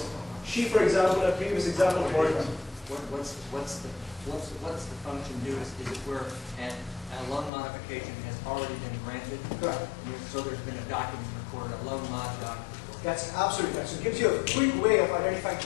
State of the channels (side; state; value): right; drops out; at 7.5 s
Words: she, for example, a previous example, boyfriend. What's the function do? Is it where a loan modification has already been granted? Correct. So there's been a document recorded, a loan mod document. That's absolutely right. So it gives you a quick way of identifying